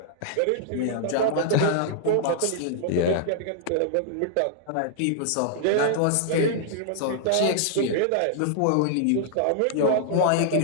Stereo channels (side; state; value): both; different; correlation -0.01